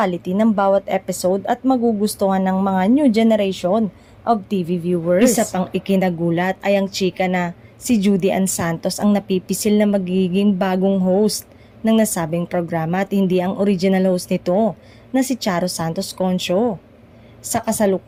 ng bawat episode at magugustuhan ng mga new generation of TV viewers. Isa pang ikinagulat ay ang chika na si Judy Ann Santos ang napipisil na magiging bagong host ng nasabing programa at hindi ang original host nito na si Charo Santos Concho. Sa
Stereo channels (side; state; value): both; identical; correlation 1.00